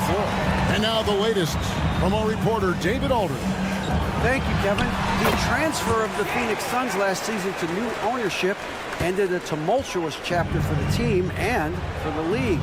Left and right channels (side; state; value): both; identical; correlation 1.00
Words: floor. And now the latest from our reporter, David Aldridge. Thank you, Kevin. The transfer of the Phoenix Suns last season to new ownership ended a tumultuous chapter for the team and for the league.